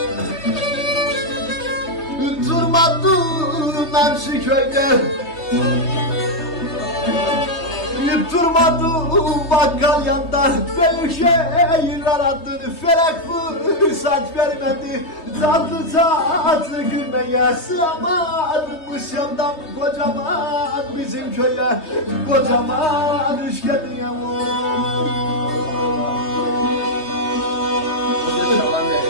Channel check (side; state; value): right; late; 3.2 ms